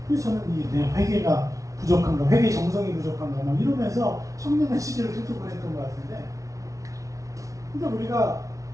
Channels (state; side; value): late; left; 0.16 ms